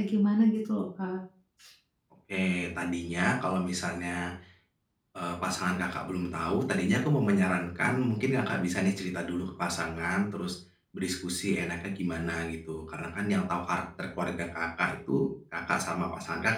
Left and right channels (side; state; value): both; identical; correlation 1.00